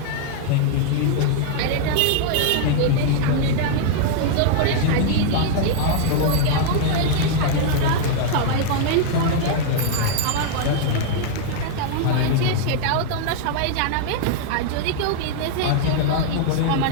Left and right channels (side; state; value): both; different; correlation 0.00